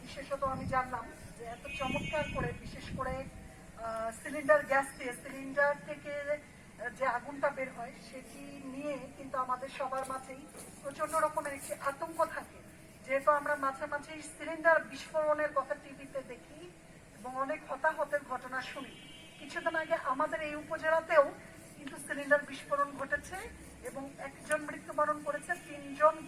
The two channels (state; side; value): identical; both; correlation 1.00